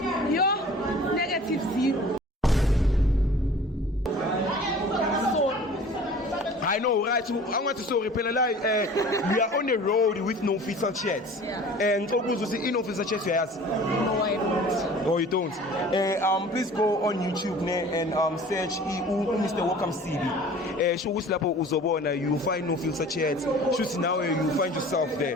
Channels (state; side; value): normal; both; correlation 0.45